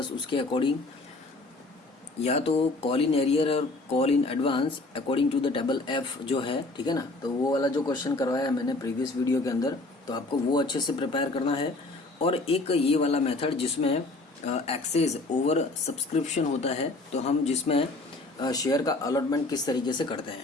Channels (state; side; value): quieter; right; 3.1 dB